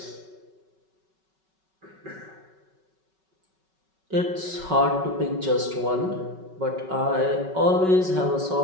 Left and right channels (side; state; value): left; late; 5.3 ms